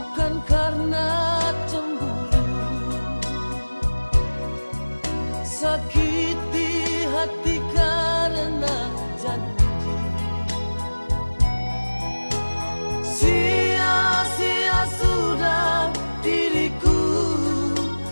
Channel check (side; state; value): both; inverted; correlation -1.00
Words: karena cemburu, sakit di hati karena janji. Sia-sia sudah diriku